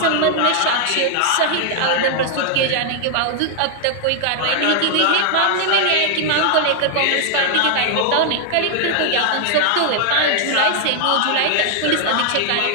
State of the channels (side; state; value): both; different; correlation 0.00